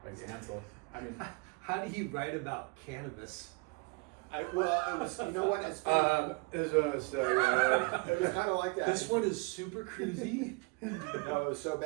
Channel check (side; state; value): left; quieter; 29.3 dB